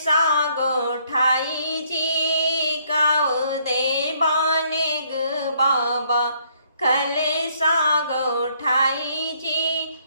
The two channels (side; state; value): both; inverted; correlation -0.67